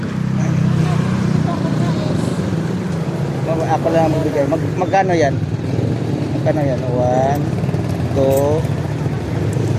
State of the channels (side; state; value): both; identical; correlation 1.00